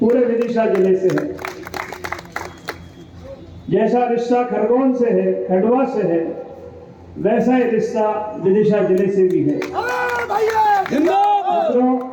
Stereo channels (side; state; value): both; identical; correlation 1.00